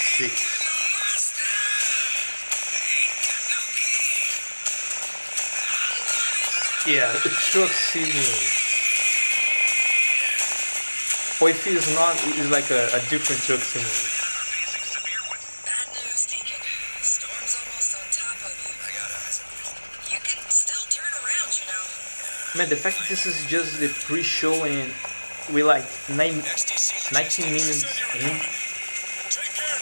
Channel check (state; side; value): inverted; both; correlation -1.00